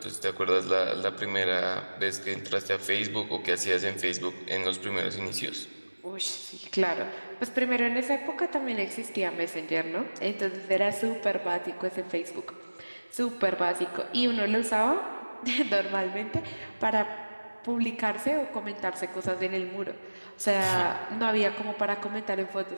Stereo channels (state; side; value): inverted; both; correlation -1.00